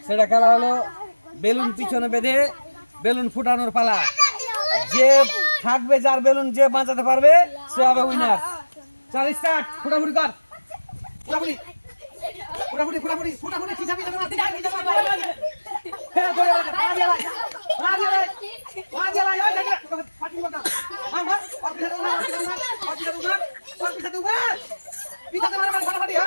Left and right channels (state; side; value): inverted; both; correlation -1.00